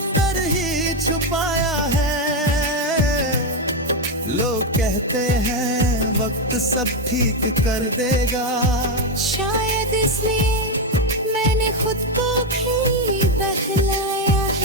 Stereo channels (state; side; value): normal; both; correlation 0.06